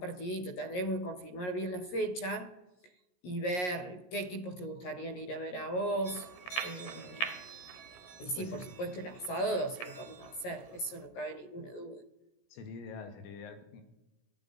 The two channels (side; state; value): right; late; 17 ms